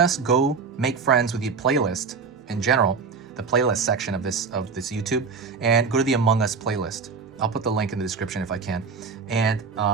go make friends with the playlist in general, the playlist section of this YouTube, and go to the Among Us playlist. I'll put the link in the description if I can, and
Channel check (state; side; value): quieter; left; 5.1 dB